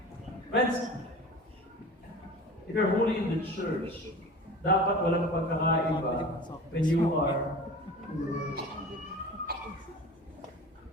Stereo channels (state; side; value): normal; both; correlation 0.38